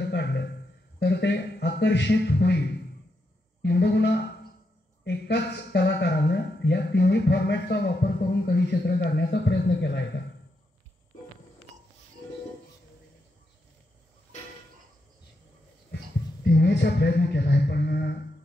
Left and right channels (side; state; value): both; normal; correlation 0.83